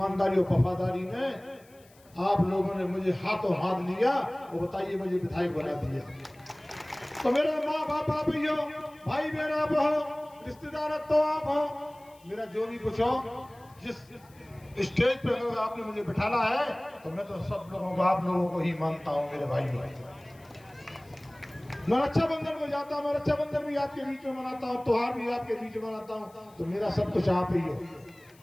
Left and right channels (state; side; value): noise; left; hiss, 28 dB below the sound